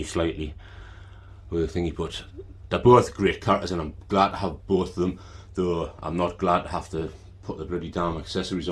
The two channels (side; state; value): both; identical; correlation 1.00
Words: slightly with the thingy, but they're both great characters and I'm glad to have both of them, though I'm not glad to have to put the bloody damn accessories